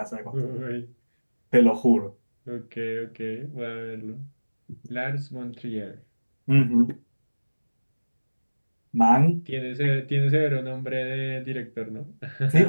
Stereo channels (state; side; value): inverted; both; correlation -1.00